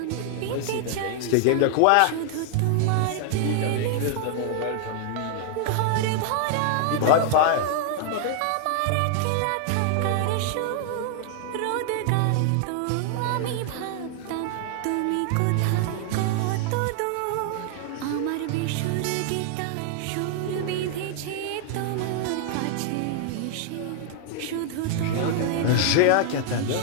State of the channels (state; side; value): different; both; correlation 0.00